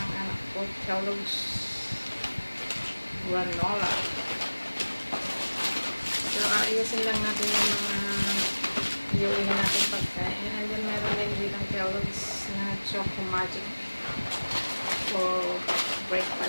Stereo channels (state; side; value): inverted; both; correlation -1.00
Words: anak ko, Kellogg's granola. So, ayusin lang natin yung mga iuwi natin pagkain. And then, meron din dito Kellogg's na Choco Magic for